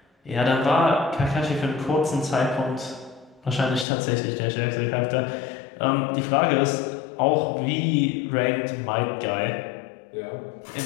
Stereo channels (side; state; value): right; drops out; at 3.9 s